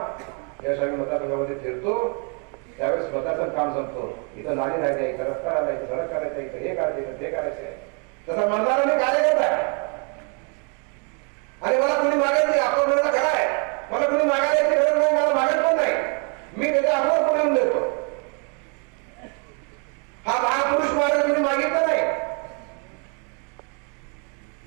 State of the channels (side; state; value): left; quieter; 37.5 dB